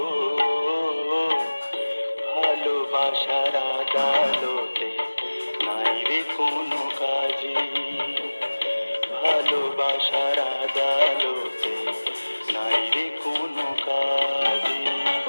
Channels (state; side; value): inverted; both; correlation -1.00